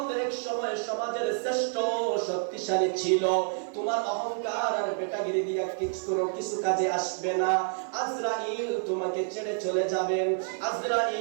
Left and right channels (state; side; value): silent; left; 59 dB below the other